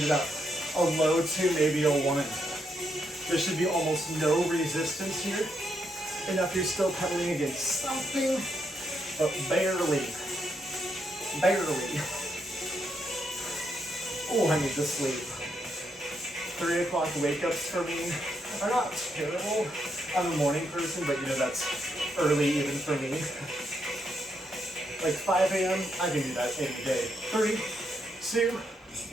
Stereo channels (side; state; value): both; normal; correlation 0.79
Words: it up. A low 2, maybe a 1. There should be almost no resistance here. Enough you're still pedaling against something, but barely. Barely. Oh, I need to sleep. 3 o'clock wake-ups for me are not terrible. I'm a morning person, but you know, that's early even for me. Like 5 a.m., I can do that any day. 3, 2,